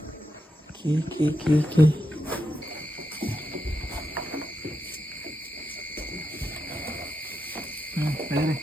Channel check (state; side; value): normal; both; correlation 0.85